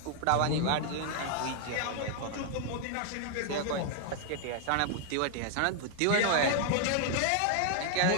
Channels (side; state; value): both; different; correlation -0.01